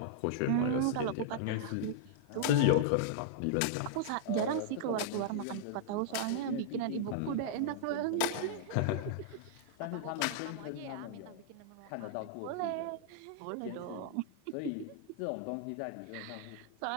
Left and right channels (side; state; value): both; different; correlation -0.02